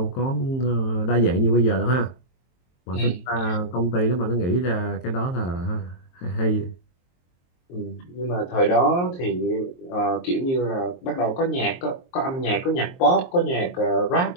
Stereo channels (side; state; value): right; late; 23 ms